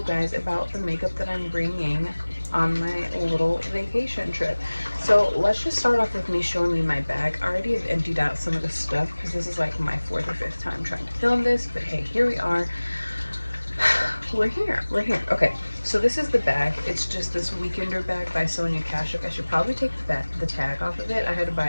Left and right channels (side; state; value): both; inverted; correlation -1.00